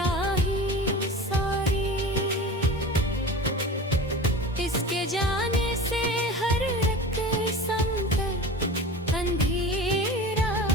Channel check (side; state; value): both; normal; correlation 0.34